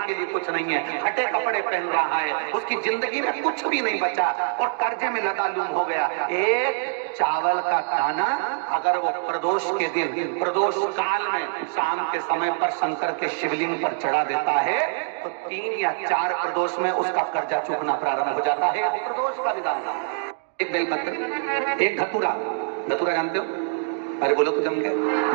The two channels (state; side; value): silent; left; digital silence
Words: लिए कुछ नहीं है, हटे कपड़े पहन रहा है, उसकी जिंदगी में कुछ भी नहीं बचा और कर्जे में लदालूम हो गया, एक चावल का दाना अगर वो प्रदोष के दिन, प्रदोष काल में शाम के समय पर शंकर के शिवलिंग पर चढ़ा देता है तो 3 या 4 प्रदोष में उसका कर्जा चुकना प्रारंभ हो जाता है। प्रदोष का विधान, एक बेलपत्र, एक धतूरा, धतूरा जानते हो? अरे बोलो तो जम के,